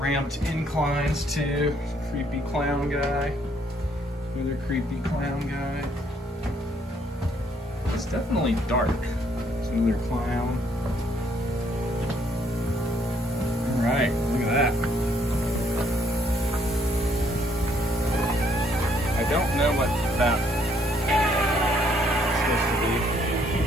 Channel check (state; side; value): normal; both; correlation 0.68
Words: inclines too. Creepy clown guy. Another creepy clown guy. It's definitely dark. There's another clown. Alright, look at that. I don't know what that is supposed to be.